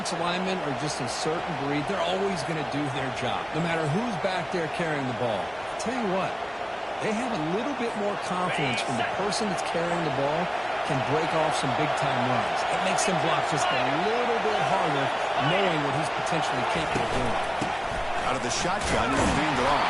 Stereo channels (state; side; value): identical; both; correlation 1.00